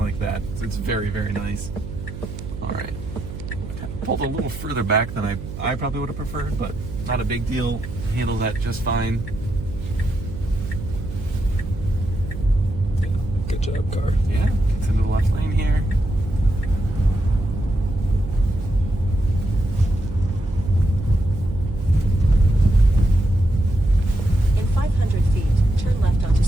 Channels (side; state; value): right; noise; hum, 10 dB below the sound